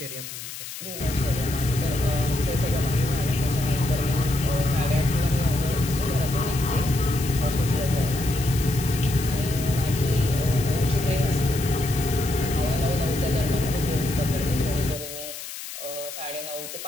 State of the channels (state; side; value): noise; left; hiss, 10 dB below the sound